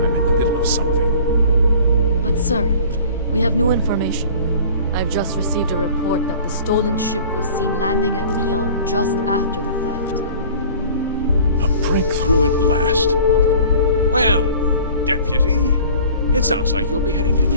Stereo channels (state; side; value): inverted; both; correlation -0.46